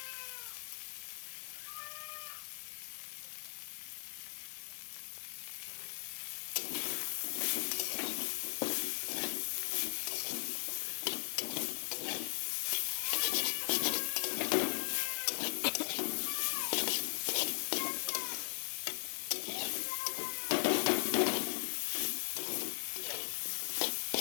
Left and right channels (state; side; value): silent; right; 52 dB below the other